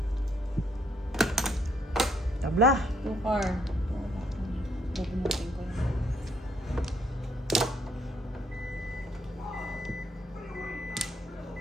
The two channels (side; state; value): both; normal; correlation 0.71